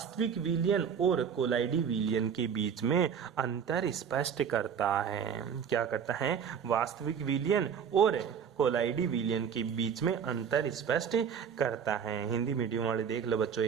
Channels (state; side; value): quieter; left; 7.4 dB